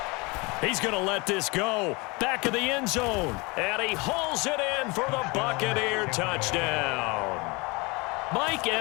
He's going to let this go. Back of the end zone. And he hauls it in for the Buccaneer touchdown. Mike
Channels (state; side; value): quieter; right; 26.5 dB